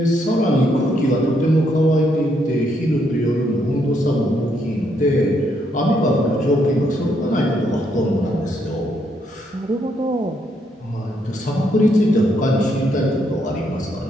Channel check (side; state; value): both; normal; correlation 0.75